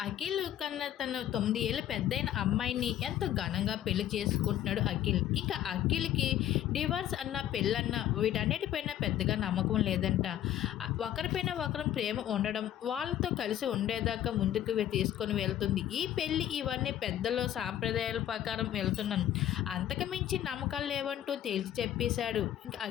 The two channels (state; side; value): quieter; right; 11.6 dB